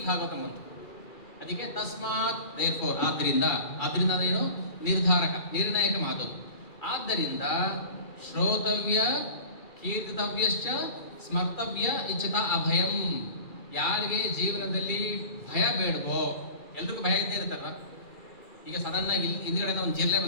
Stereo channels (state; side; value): late; right; 2.4 ms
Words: ಭಾಗವತ ಬಂತು. ಅದಕ್ಕೆ ತಸ್ಮಾತ್ ದೇರ್ಫೋರ್, ಆದ್ದರಿಂದ ಅದೇನು? ನಿರ್ಣಾಯಕ ಮಾತು. ಆದ್ದರಿಂದ ಶ್ರೋತವ್ಯ ಕೀರ್ತಿತವ್ಯಶ್ಚ ಸ್ಮರ್ತವ್ಯ ಇಚ್ಛತ ಅಭಯಂ. ಯಾರಿಗೆ ಜೀವನದಲ್ಲಿ ಭಯ ಬೇಡವೋ, ಎಲ್ರಿಗೂ ಭಯ ಇದ್ದೇ ಇರುತ್ತಲ್ವ. ಈಗ ಸಡನ್ನಾಗಿ ಹಿಂದ್ಗಡೆ ಒಂದು ಜಿರ್ಲೆ